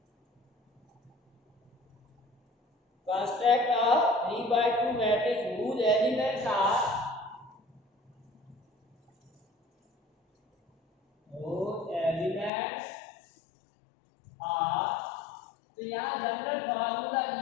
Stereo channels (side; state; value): right; drops out; at 12.5 s